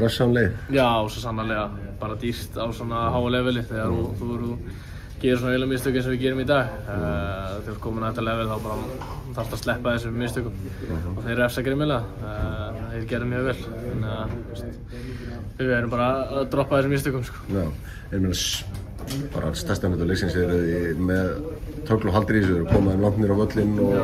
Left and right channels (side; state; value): both; identical; correlation 1.00